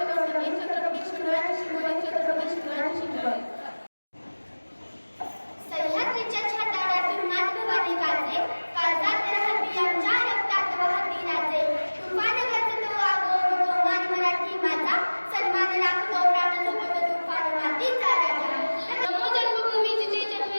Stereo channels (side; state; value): both; inverted; correlation -1.00